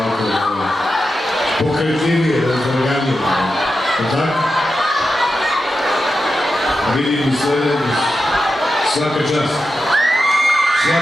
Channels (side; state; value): both; normal; correlation 0.90